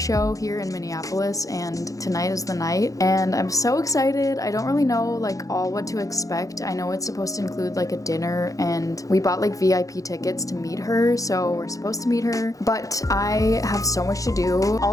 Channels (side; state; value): right; late; 0.17 ms